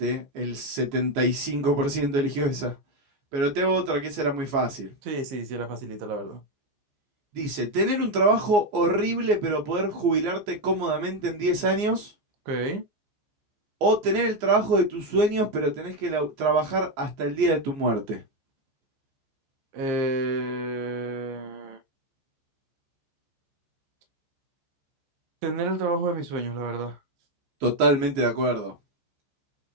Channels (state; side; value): late; left; 14 ms